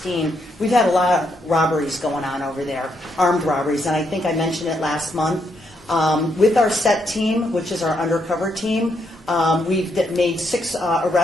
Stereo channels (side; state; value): both; normal; correlation 0.77